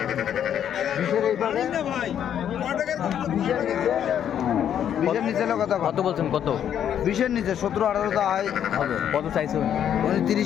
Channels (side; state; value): right; quieter; 9.5 dB